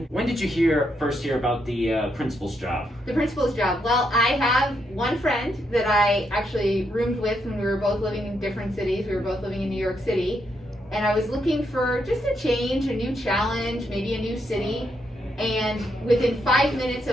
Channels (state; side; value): normal; both; correlation 0.79